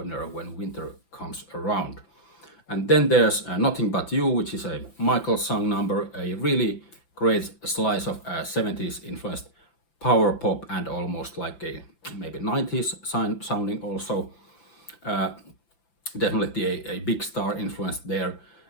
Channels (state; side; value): late; right; 5.9 ms